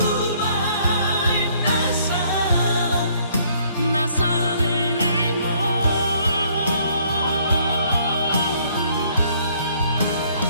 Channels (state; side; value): inverted; both; correlation -0.64